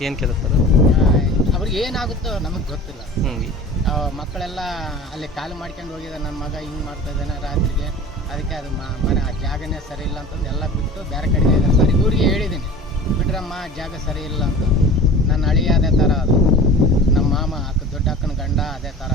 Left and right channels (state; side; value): normal; both; correlation 0.39